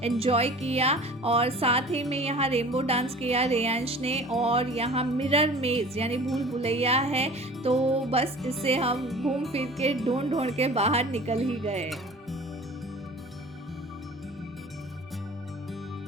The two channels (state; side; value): normal; both; correlation 0.43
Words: एंजॉय किया, और साथ ही में यहाँ रेनबो डांस किया रेयांश ने, और यहाँ मिरर मेज यानी भूल भुलैया है, तो बस इससे हम घूम फिर के ढूंढ के बाहर निकल ही गए।